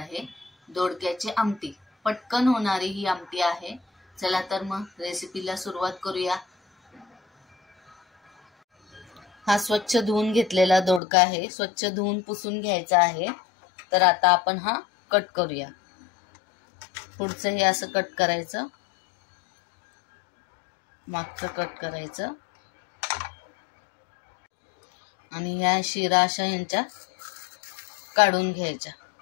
दोडक्याची आमटी. पटकन होणारी ही आमटी आहे. चला तर मग रेसिपीला सुरुवात करूया. हा स्वच्छ धुवून घेतलेला दोडका आहे. स्वच्छ धुवून पुसून घ्यायचा आहे. तर आता आपण हा कट करूया. पुढचं हे असं कट करायचं, मागचं कट करायचं आणि ह्या शिरा अशा यांच्या काढून घ्यायच्या.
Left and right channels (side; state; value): right; drops out; at 11.0 s